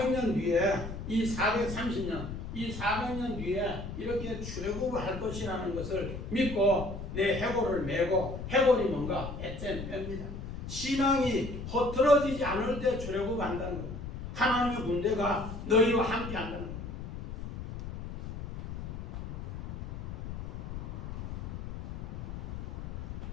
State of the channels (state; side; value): noise; left; rumble, 8 dB below the sound